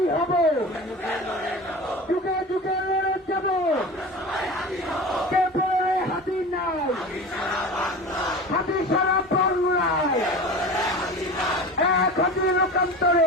হব, যুগে যুগে লড়ে যাব, কে বলে হাতি নাই, হাতি সারা বাংলায়, এক হাতি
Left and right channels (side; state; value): both; normal; correlation 0.33